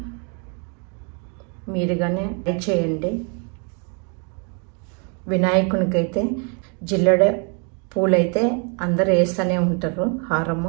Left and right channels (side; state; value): left; quieter; 37.9 dB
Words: మీరుగానే ట్రై చేయండి. వినాయకునికైతే జిల్లెడ పూలైతే అందరూ వేస్తూనే ఉంటారు.